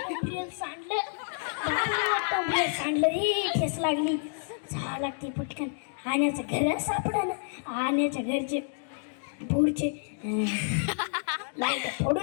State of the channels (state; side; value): silent; right; digital silence